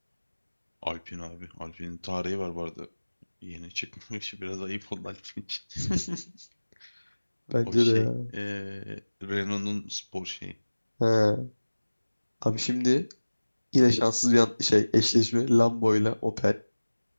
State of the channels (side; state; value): both; inverted; correlation -1.00